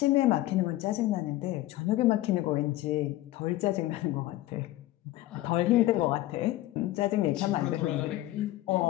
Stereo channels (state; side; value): quieter; right; 16.3 dB